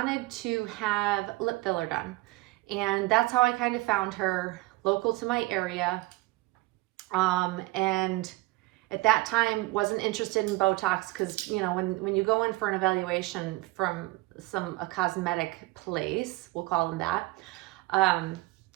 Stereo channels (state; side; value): quieter; left; 21.1 dB